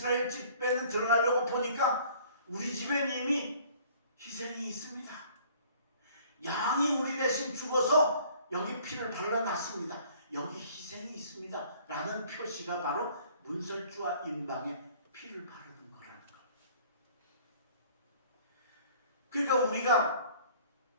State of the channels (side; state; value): both; inverted; correlation -0.53